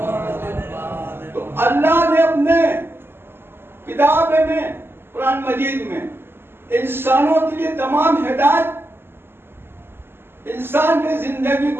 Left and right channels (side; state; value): left; late; 0.11 ms